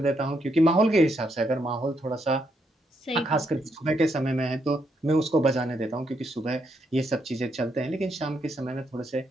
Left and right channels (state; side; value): normal; both; correlation 0.77